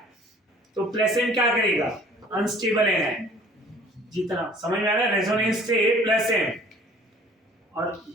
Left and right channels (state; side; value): normal; both; correlation 0.52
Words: तो प्लस एम क्या करेगा? अनस्टेबल है। जितना समझ में आ रहा है, रेजोनेंस से प्लस एम। और